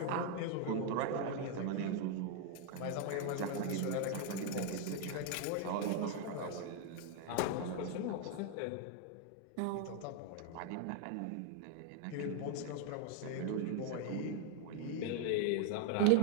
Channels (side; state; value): both; different; correlation 0.00